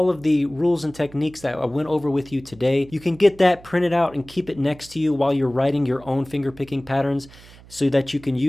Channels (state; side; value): noise; right; hum, 22 dB below the sound